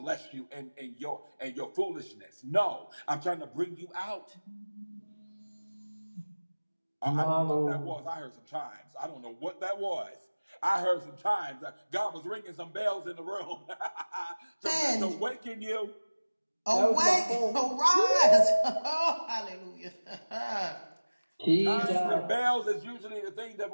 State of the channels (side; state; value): both; inverted; correlation -1.00